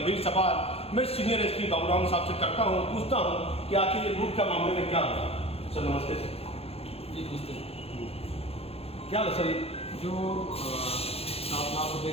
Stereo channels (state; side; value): late; right; 0.29 ms